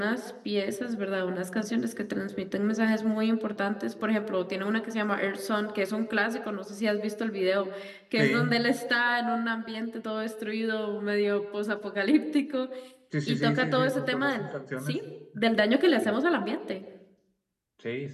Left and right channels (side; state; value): both; identical; correlation 1.00